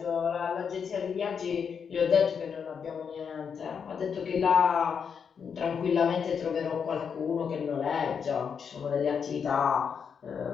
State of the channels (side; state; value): right; quieter; 6.7 dB